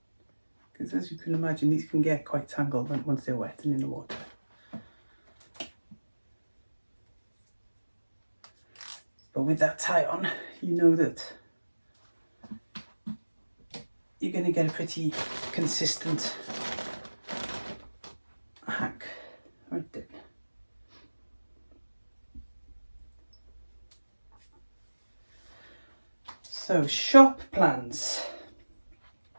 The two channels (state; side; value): inverted; both; correlation -1.00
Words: Because as you can imagine, these can get quite tangled once they're wet and in the water. But with that tie on, you know that you're going to get a pretty consistent hack right there. So, shop plans.